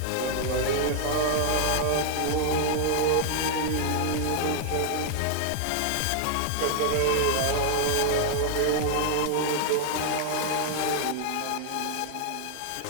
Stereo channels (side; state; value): both; different; correlation 0.00